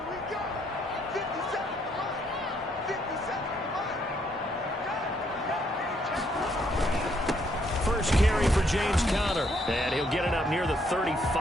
First carry for James Conner. And he'll get it up near the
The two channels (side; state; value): both; normal; correlation 0.71